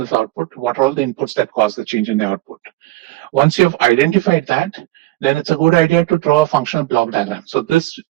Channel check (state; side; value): quieter; left; 18.3 dB